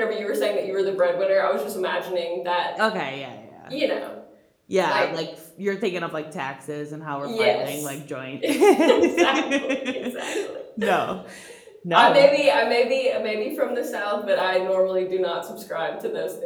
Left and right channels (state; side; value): identical; both; correlation 1.00